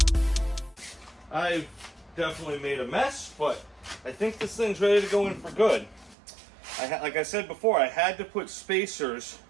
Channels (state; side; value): drops out; left; at 6.2 s